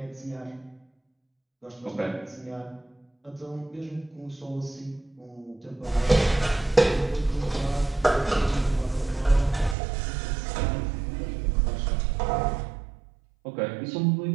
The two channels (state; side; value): drops out; left; at 9.8 s